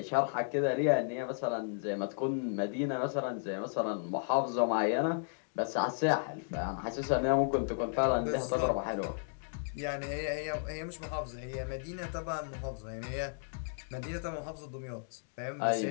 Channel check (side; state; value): right; silent; digital silence